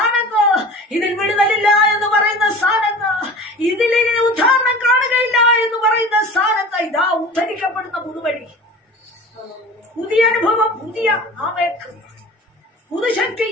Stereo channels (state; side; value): normal; both; correlation 0.39